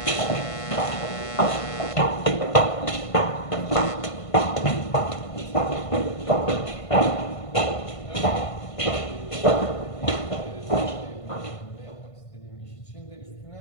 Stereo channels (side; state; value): right; late; 1.5 ms